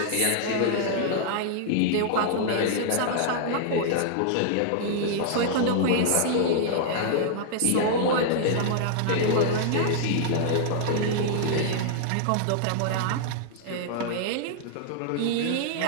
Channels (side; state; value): both; different; correlation -0.01